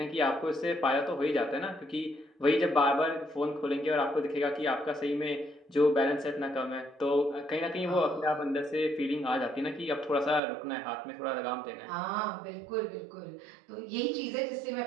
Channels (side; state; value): left; drops out; at 10.4 s